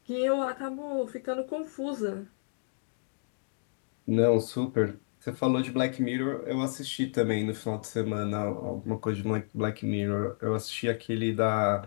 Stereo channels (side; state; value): right; silent; digital silence